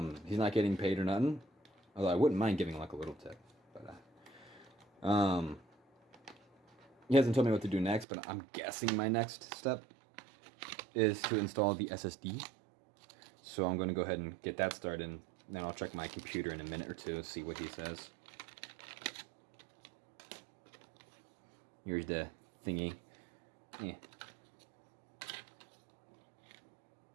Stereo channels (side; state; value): left; drops out; at 8.1 s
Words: He's not getting paid or nothing, although I wouldn't mind giving like a little tip. But he hasn't told me what to do next, but I'm guessing my next step is to install the SSD. So I'm going to go ahead and get that started Then I'll check my computer in a minute or two, see what he says. Here's the thingy. Yeah.